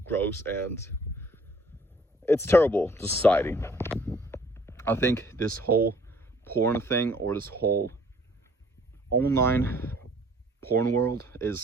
gross and it's terrible to society. I think this whole porn thing, or this whole online porn world,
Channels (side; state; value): both; normal; correlation 0.58